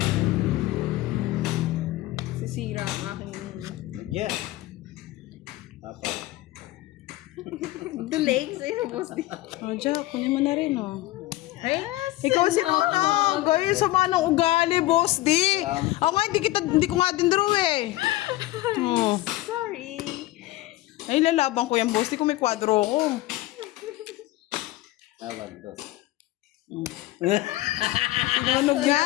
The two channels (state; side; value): quieter; right; 17.3 dB